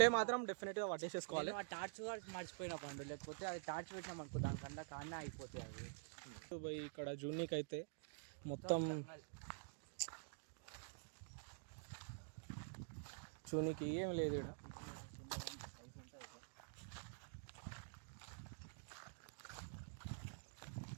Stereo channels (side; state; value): left; silent; digital silence